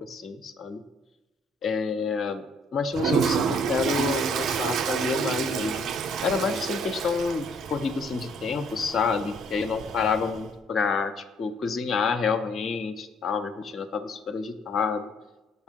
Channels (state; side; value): normal; both; correlation 0.63